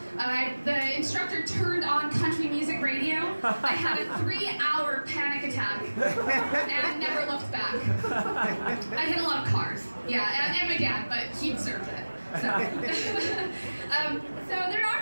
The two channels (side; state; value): both; inverted; correlation -1.00